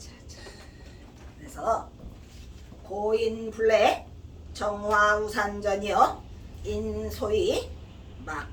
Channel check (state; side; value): identical; both; correlation 1.00